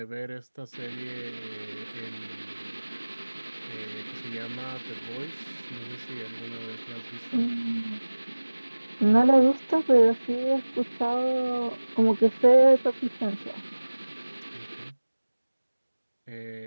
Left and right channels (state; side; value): inverted; both; correlation -1.00